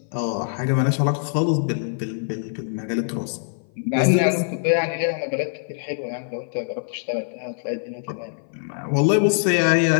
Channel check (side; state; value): right; silent; 57 dB below the other